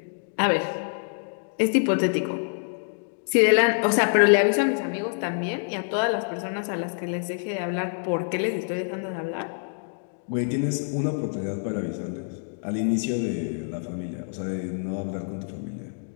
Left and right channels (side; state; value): right; silent; digital silence